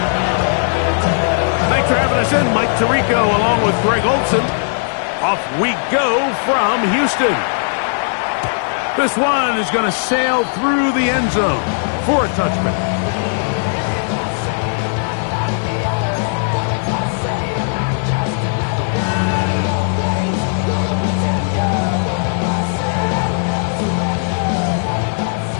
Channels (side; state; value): right; silent; digital silence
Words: Mike Tirico along with Greg Olson. Off we go from Houston. This one is going to sail through the end zone for a touchback.